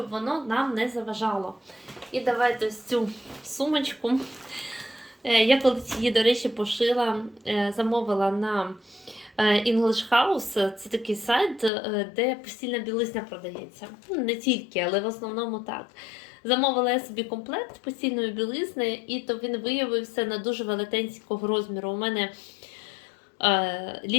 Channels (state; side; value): drops out; right; at 11.7 s